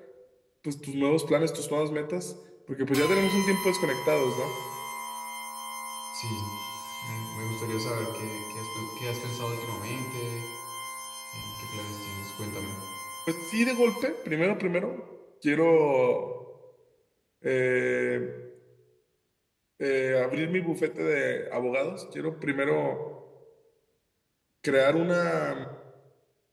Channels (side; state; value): both; identical; correlation 1.00